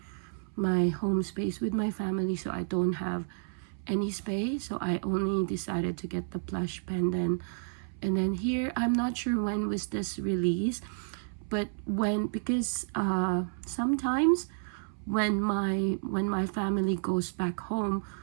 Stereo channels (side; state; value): left; silent; 57 dB below the other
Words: home space with my family, so I don't have any space. So I only decided to get the plush pendant. And then here, I'm not sure when was this released, but because sometimes when my family goes back home,